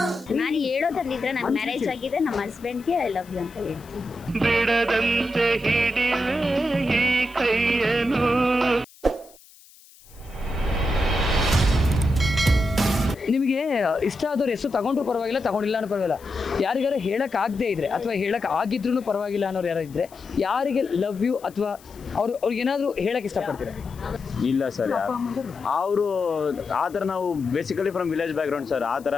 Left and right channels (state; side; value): noise; left; hiss, 25 dB below the sound